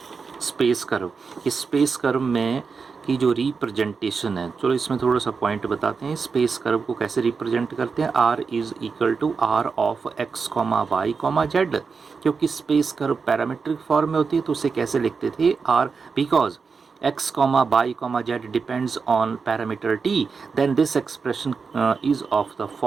स्पेस कर्व, इस स्पेस कर्व में की जो रिप्रेजेंटेशन है। चलो इसमें थोड़ा सा पॉइंट बताते हैं, स्पेस कर्व को कैसे रिप्रेजेंट करते हैं। R is equal to r of x comma y comma z, क्योंकि स्पेस कर्व पैरामीट्रिक फॉर्म में होती है तो उसे कैसे लिखते थे, r, because x comma y comma z depends on parameter t, then this expression is of the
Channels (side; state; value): left; quieter; 5.2 dB